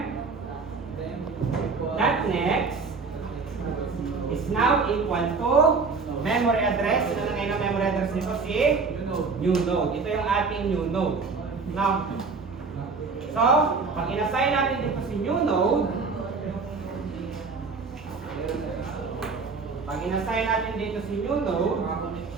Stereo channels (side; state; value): left; quieter; 4.6 dB